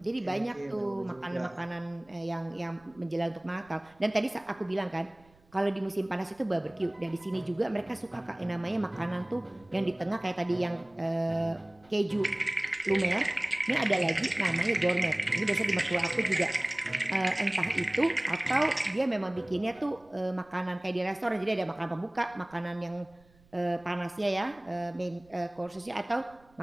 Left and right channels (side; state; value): right; noise; rumble, 29 dB below the sound